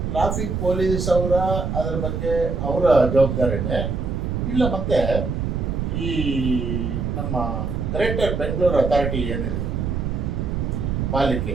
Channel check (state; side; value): noise; right; rumble, 1 dB below the sound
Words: ಟ್ರಾಫಿಕ್ ಪೊಲೀಸ್ ಅದರ ಬಗ್ಗೆ ಅವರ ಜವಾಬ್ದಾರಿನೇ, ಇಲ್ಲ ಮತ್ತೆ ಈ ನಮ್ಮ ಗ್ರೇಟರ್ ಬೆಂಗಳೂರು ಅಥಾರಿಟಿ ಏನಿದೆ ಪಾಲಿಕೆ,